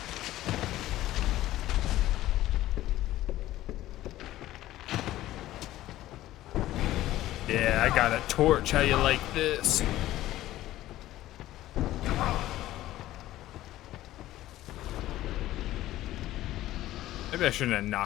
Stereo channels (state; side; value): quieter; right; 14.9 dB